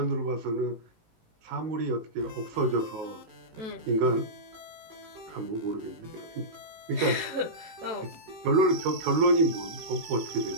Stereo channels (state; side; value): late; left; 18 ms